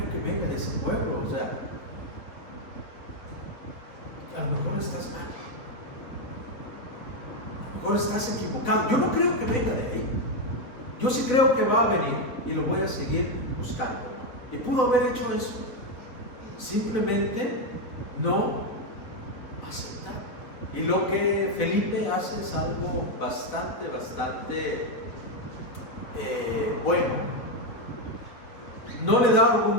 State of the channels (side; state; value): right; late; 4.3 ms